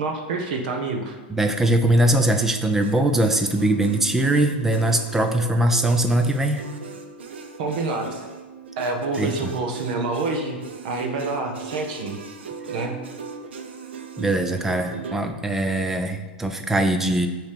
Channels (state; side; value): normal; both; correlation 0.55